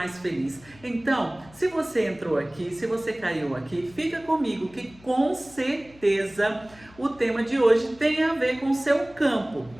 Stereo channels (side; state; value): left; noise; hum, 25 dB below the sound